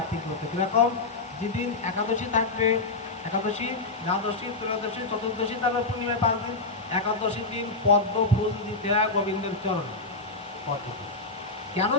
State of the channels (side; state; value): right; quieter; 3.4 dB